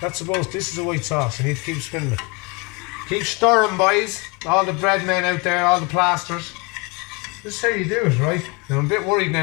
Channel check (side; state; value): right; quieter; 28.5 dB